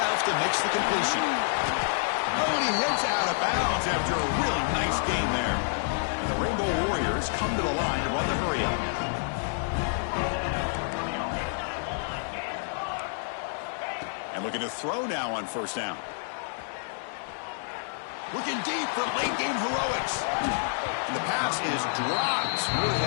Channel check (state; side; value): silent; right; digital silence